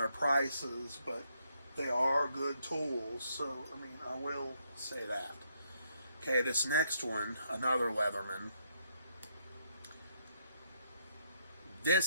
prices, but they are good tools. So I mean, I will say that. Okay, this next one, another Leatherman.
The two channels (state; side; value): inverted; both; correlation -0.74